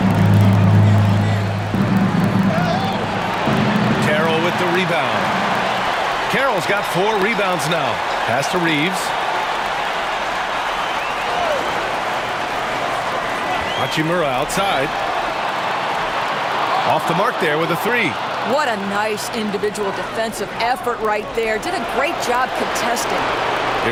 Carroll with the rebound. Carroll's got 4 rebounds now. Pass to Reeves. Hachimura outside. Off the mark there with a three. What a nice individual defensive effort right there. Did a great job contesting.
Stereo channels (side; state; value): both; identical; correlation 1.00